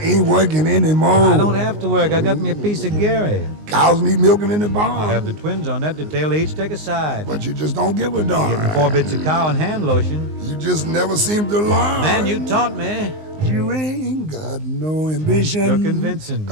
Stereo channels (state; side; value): late; left; 19 ms